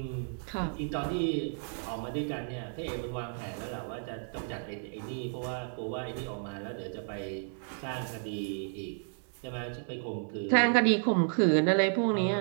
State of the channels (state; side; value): silent; left; 56 dB below the other